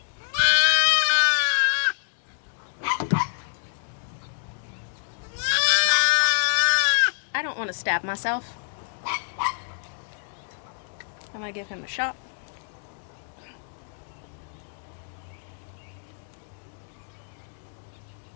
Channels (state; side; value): silent; right; digital silence